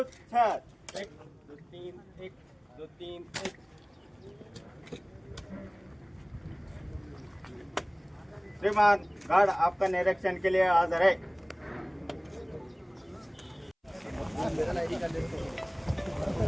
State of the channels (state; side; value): identical; both; correlation 1.00